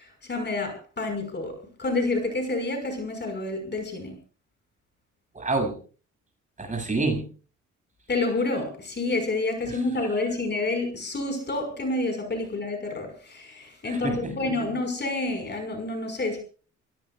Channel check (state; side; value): normal; both; correlation 0.33